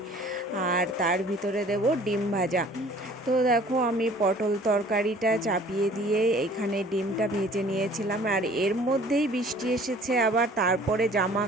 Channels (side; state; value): both; normal; correlation 0.51